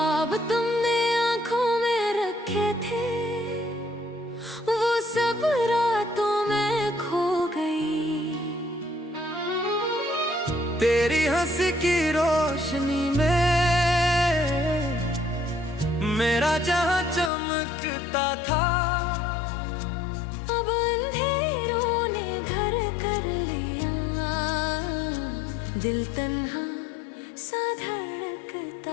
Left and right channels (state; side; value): drops out; right; at 17.3 s